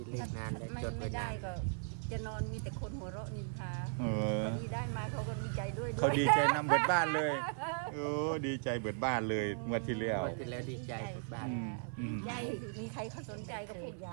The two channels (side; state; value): left; silent; 53 dB below the other